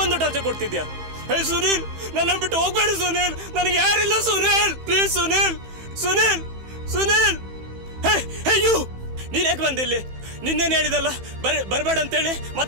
ಟಾರ್ಚರ್ ಕೊಡ್ತಿದ್ಯಾ? ಹೇ ಸುನೀಲ್, ನನ್ನ ಬಿಟ್ಟು ಹೋಗ್ಬೇಡ ಸುನೀಲ್, ನನಗೆ ಯಾರಿಲ್ಲ Sunil, please Sunil. Sunil, Sunil, hey you, ನೀನ್ ಯಾಕೆ ಬಂದಿಲ್ಲಿ? ನಿನ್ನೇನು ಹೇಳಿದಲ್ಲ ಬರ್ಬೇಡ ಅಂತೇಳಿ,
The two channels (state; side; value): late; left; 15 ms